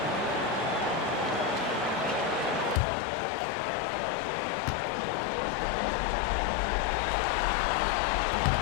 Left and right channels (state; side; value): drops out; right; at 2.8 s